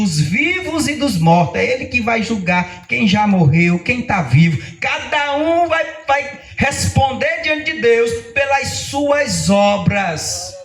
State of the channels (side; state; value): both; identical; correlation 1.00